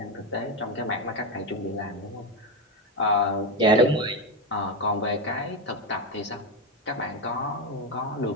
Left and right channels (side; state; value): both; normal; correlation 0.11